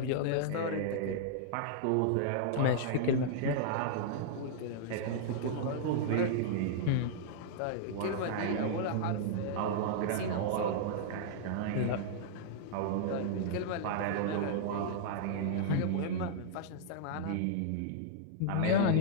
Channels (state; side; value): different; both; correlation -0.02